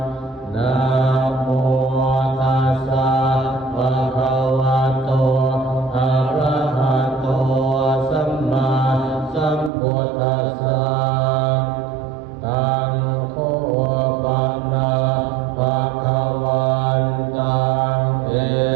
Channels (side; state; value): left; drops out; at 9.7 s